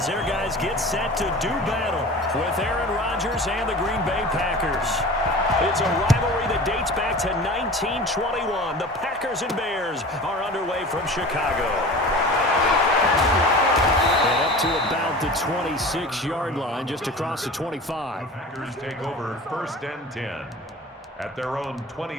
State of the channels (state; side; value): normal; both; correlation 0.38